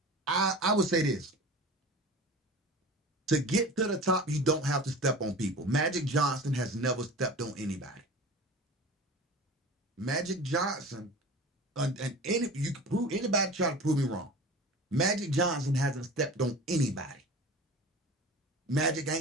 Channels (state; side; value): normal; both; correlation 0.36